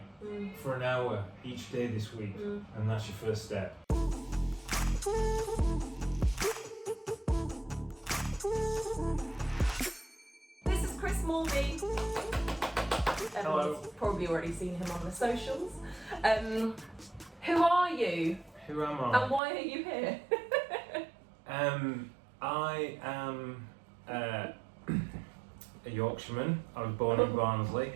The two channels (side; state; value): left; drops out; at 19.4 s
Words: for an hour each day this week, and that's your first step. This is Chris Moorby. Hello. Everyone's probably already seen him on the socials. Who are you? Who am I? And why are you here? I am a Yorkshireman. I was born in Barnsley.